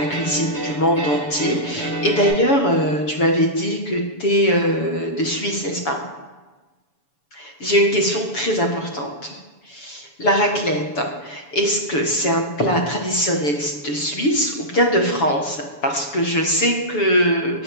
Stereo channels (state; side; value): late; right; 7.0 ms